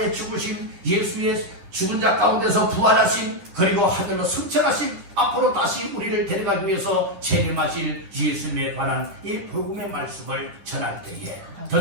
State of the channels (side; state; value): left; late; 10 ms